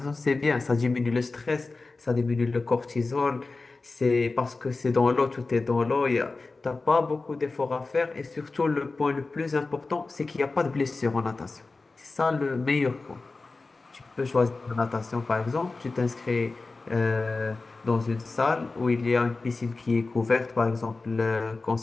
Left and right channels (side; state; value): right; quieter; 3.7 dB